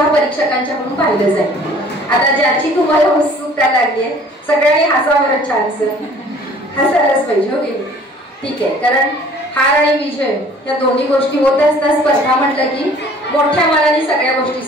परीक्षकांच्याकडून पाहिलं जाईल। आता ज्याची तुम्हाला उत्सुकता लागली आहे सगळ्यांनी हसावं, चान्स हसायलाच पाहिजे हो की ठीक आहे। कारण हार आणि विजय या दोन्ही गोष्टी होत असतात। स्पर्धा म्हटलं की मोठ्या मनाने सगळ्या गोष्टी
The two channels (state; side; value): normal; both; correlation 0.52